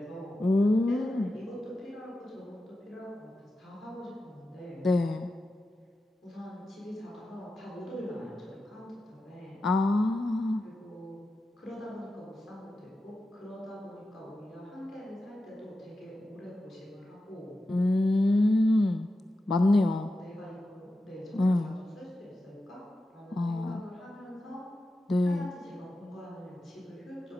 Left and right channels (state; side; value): normal; both; correlation 0.91